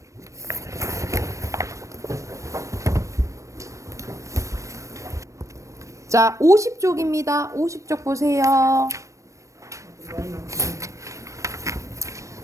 자, 50쪽입니다. 50쪽 보세요.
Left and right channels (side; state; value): left; late; 0.15 ms